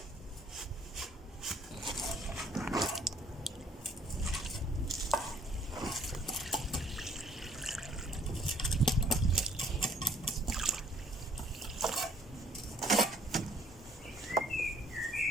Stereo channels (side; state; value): both; normal; correlation 0.62